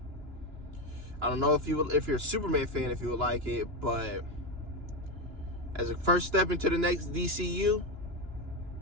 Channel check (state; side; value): late; left; 2.9 ms